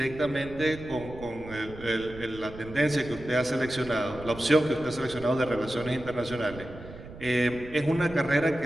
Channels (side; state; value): right; noise; rumble, 14 dB below the sound